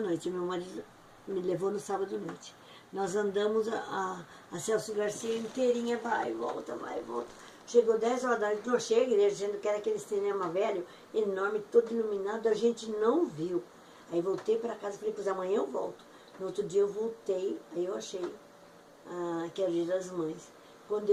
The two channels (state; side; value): identical; both; correlation 1.00